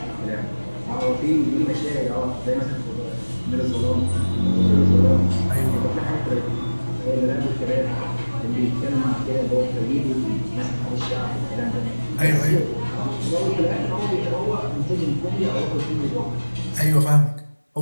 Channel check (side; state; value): both; inverted; correlation -1.00